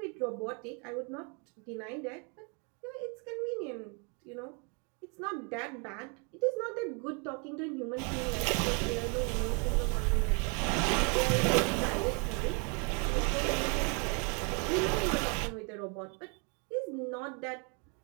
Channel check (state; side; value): quieter; left; 35.7 dB